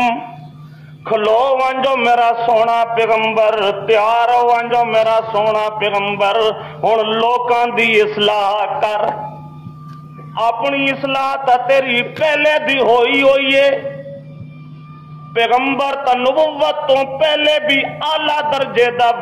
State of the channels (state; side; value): identical; both; correlation 1.00